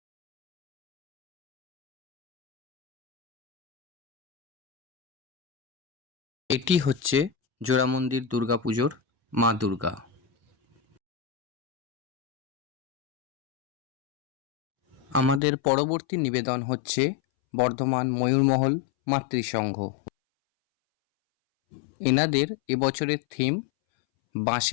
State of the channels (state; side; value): drops out; right; at 15.4 s